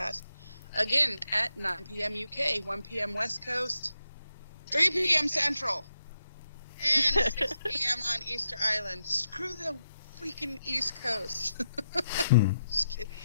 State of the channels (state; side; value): inverted; both; correlation -0.84